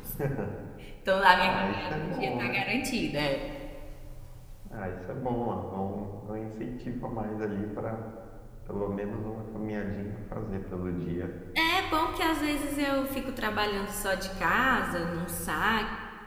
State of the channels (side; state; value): both; identical; correlation 1.00